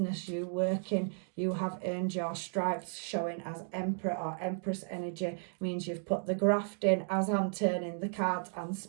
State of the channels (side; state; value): left; silent; 55 dB below the other